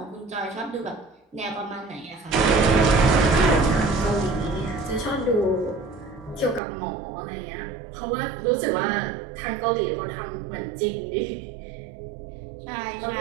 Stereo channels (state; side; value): drops out; left; at 6.6 s